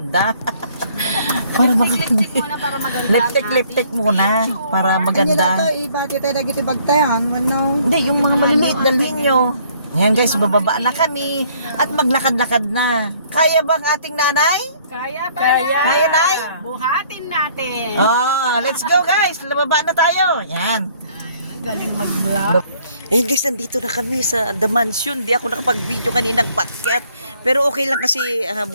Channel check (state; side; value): inverted; both; correlation -0.61